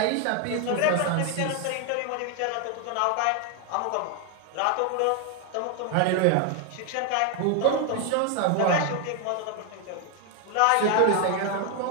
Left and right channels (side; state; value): both; different; correlation 0.01